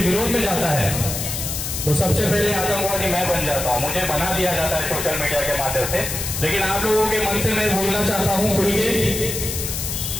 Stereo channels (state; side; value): noise; left; hiss, 4 dB below the sound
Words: विरोध में जाता है तो सबसे पहले आतंकवादी मैं बन जाता हूँ, मुझे बना दिया जाता है सोशल मीडिया के माध्यम से। लेकिन आप लोगों के मन से मैं बोलना चाहता हूँ खुल के,